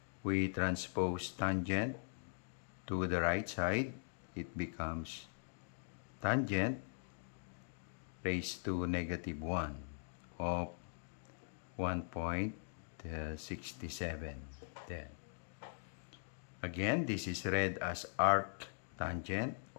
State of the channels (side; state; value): right; silent; digital silence